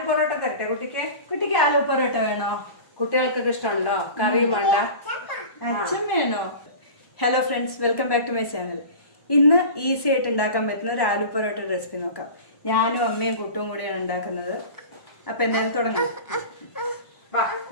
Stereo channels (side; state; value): right; late; 1.1 ms